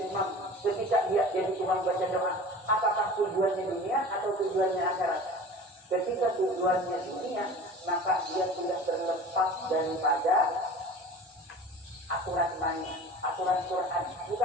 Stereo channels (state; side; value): normal; both; correlation 0.40